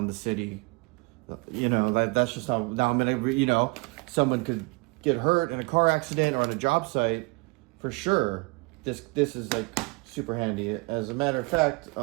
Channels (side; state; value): left; quieter; 27.5 dB